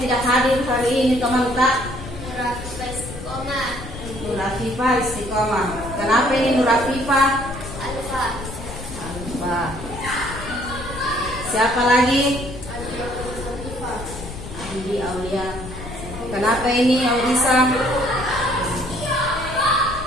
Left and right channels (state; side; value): noise; left; rumble, 11 dB below the sound